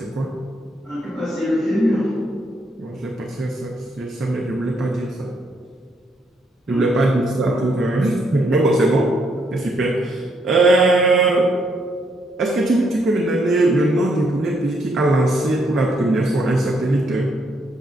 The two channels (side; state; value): both; normal; correlation 0.74